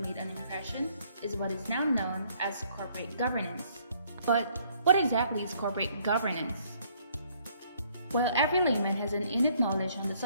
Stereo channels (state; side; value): inverted; both; correlation -0.64